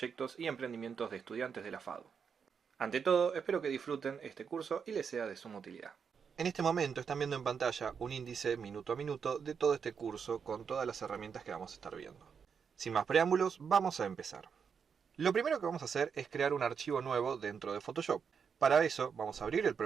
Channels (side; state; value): left; quieter; 6.6 dB